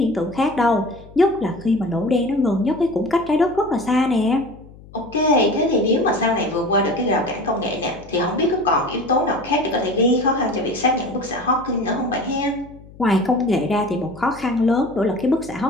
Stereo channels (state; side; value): noise; left; hum, 21 dB below the sound